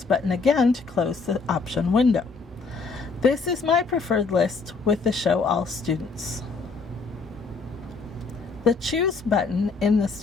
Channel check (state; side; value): quieter; right; 4.4 dB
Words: button again to close the option window. This is my preferred list with the Show All Students. The Choose button in the